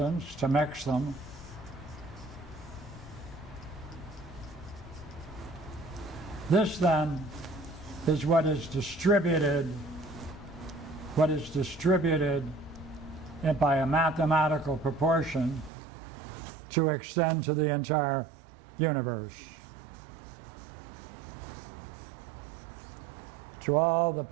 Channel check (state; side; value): drops out; left; at 15.7 s